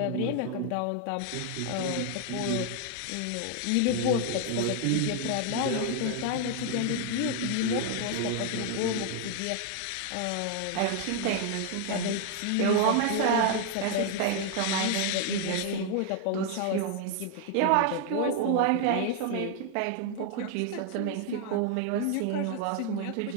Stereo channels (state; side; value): different; both; correlation 0.00